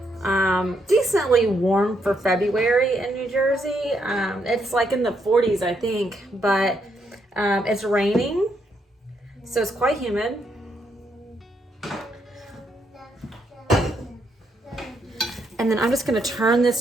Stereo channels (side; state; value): both; normal; correlation 0.76